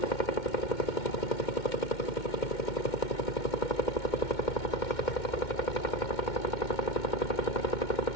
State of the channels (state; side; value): late; right; 2.1 ms